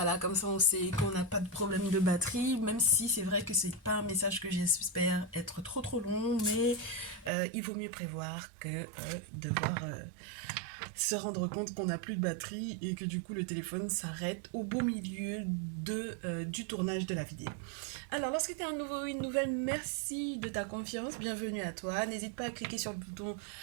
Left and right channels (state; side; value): drops out; left; at 7.3 s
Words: comme ça on sait qu'on n'a pas de problème de batterie, même si c'est vrai que c'est pas un message que j'espère être trop long, mais il vaut mieux prévoir que devoir se rendre compte qu'on n'a plus de batterie et que du coup le téléphone s'arrête au beau milieu du tournage de la vidéo. Alors, lorsque tu es un nouveau ou une nouvelle, merci de ta confiance, bienvenue à toi. N'hésite pas à cliquer sur le bouton